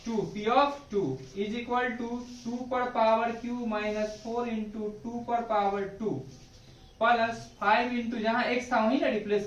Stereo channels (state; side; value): identical; both; correlation 1.00